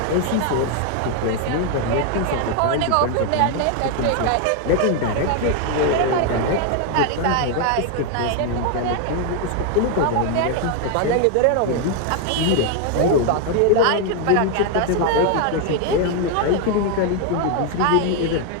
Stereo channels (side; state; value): both; different; correlation 0.00